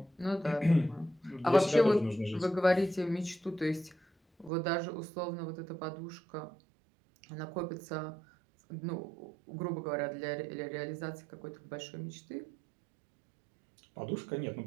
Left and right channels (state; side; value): drops out; left; at 4.5 s